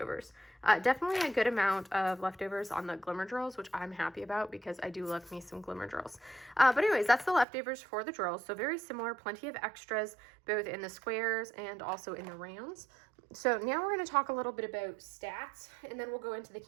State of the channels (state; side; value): drops out; left; at 7.5 s